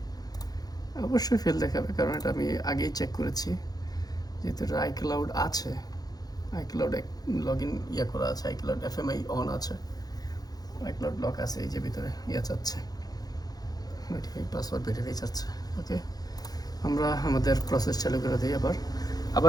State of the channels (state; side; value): late; right; 0.19 ms